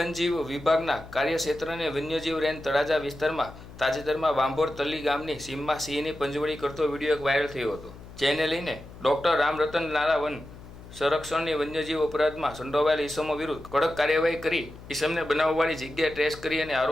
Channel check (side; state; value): left; noise; hum, 17 dB below the sound